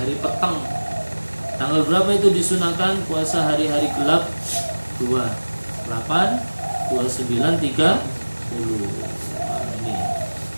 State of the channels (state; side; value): inverted; both; correlation -1.00